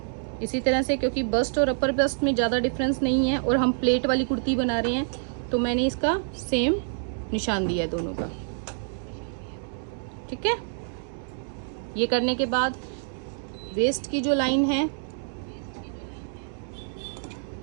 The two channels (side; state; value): left; silent; digital silence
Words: इसी तरह से, क्योंकि बस्ट और अपर बस्ट में ज़्यादा डिफरेंस नहीं है और हम प्लेट वाली कुर्ती बना रहे हैं, तो मैंने इसका सेम निशान दिया है दोनों का, ठीक है। ये करने के बाद वेस्ट की जो लाइन है